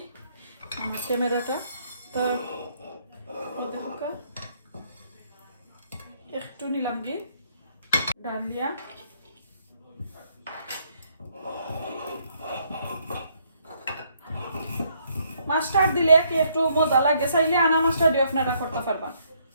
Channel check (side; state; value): both; inverted; correlation -0.70